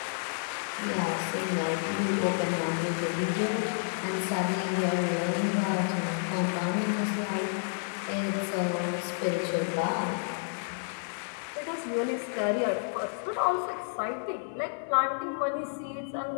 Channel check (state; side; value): silent; right; digital silence